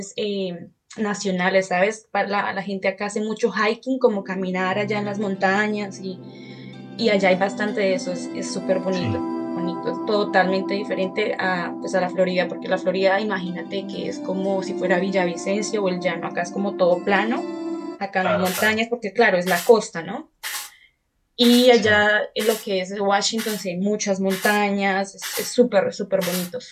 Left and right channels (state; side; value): identical; both; correlation 1.00